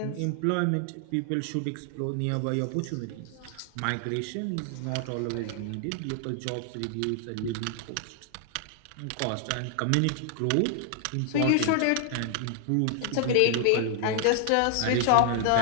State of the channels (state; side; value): different; both; correlation 0.00